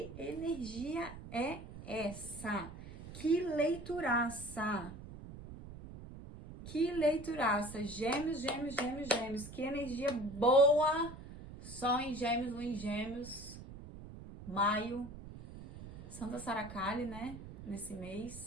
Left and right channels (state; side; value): noise; right; rumble, 13 dB below the sound